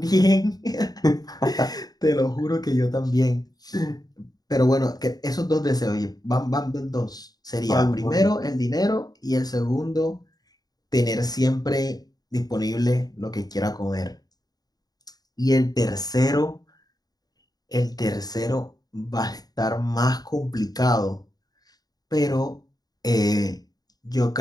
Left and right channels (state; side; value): late; right; 0.19 ms